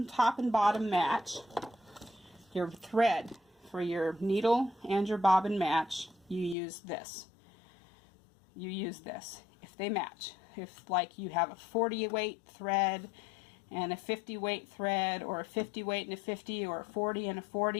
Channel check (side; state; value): right; drops out; at 6.6 s